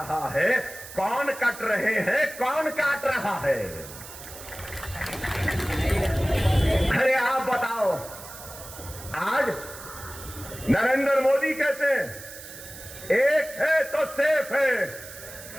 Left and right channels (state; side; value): noise; right; hiss, 14 dB below the sound